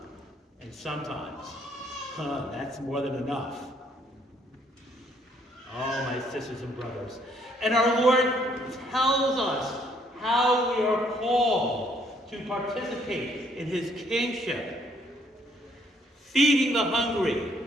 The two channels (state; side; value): normal; both; correlation 0.66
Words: sometimes, that's more than enough. Oh, my sisters and brothers. And our Lord tells us how we are called to participate in his kingship. Feeding the hungry,